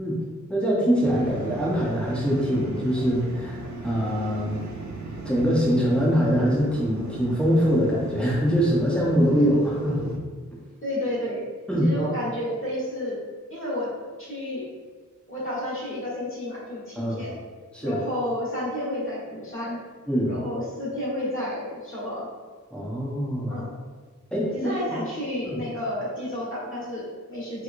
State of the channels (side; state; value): both; normal; correlation 0.65